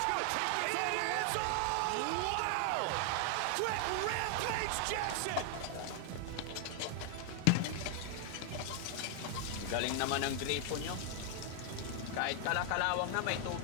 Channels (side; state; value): both; different; correlation 0.00